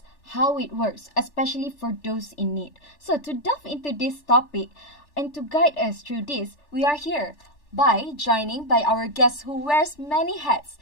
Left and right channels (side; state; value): right; late; 3.4 ms